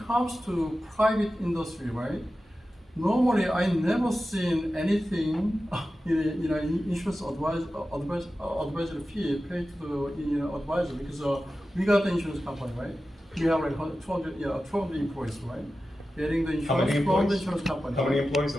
comes to private industry, right? normally I never seen anything in insurance advisory fee paid to the advisor because we got the insurance company, right? We have like 200 employees, right? Getting the How many insurance from the employees? insurance company. How many employees,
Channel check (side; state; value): both; normal; correlation 0.93